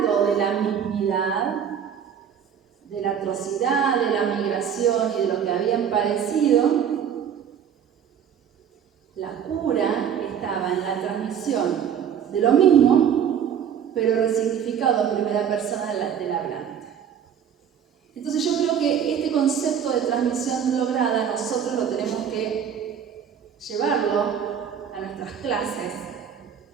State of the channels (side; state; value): left; quieter; 8.3 dB